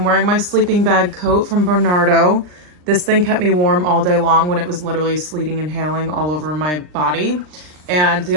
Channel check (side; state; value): left; late; 39 ms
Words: wearing my sleeping bag coat from Bernardo. This thing kept me warm all day long when it was literally sleeting and hailing all over my body. And the